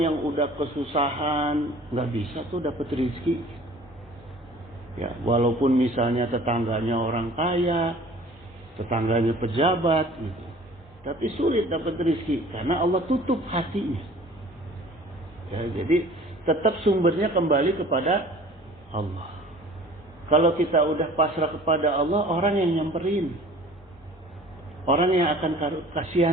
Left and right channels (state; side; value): normal; both; correlation 0.47